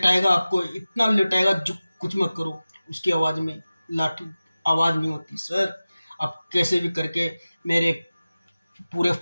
आपको, इतना लेटाएगा जो कुछ मत करो। उसकी आवाज़ में लाठी आवाज़ नहीं होती सर। आप कैसे भी करके मेरे पूरे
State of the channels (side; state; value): both; inverted; correlation -0.97